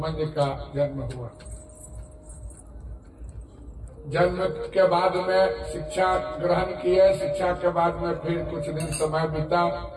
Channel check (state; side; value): identical; both; correlation 1.00